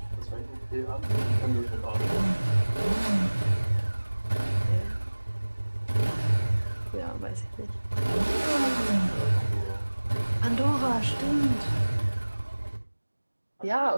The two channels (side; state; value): both; inverted; correlation -1.00